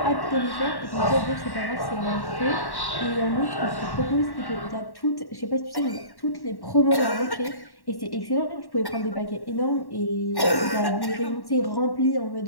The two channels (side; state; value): right; late; 1.1 ms